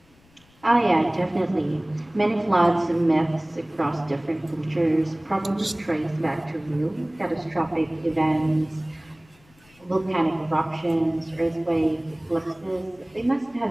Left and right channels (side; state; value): left; noise; rumble, 30 dB below the sound